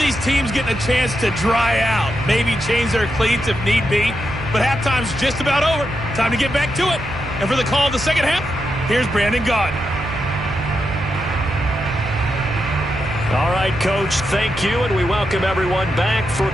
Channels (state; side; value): noise; right; hum, 11 dB below the sound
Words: teams getting a chance to dry out, maybe change their cleats if need be, but halftime's just about over. Time to get back to it. And for the call of the second half, here's Brandon Gaudin. All right, Coach, thank you, and we welcome everyone back for